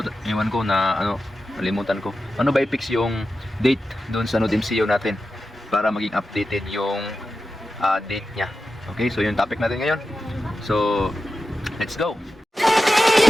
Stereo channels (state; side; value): normal; both; correlation 0.92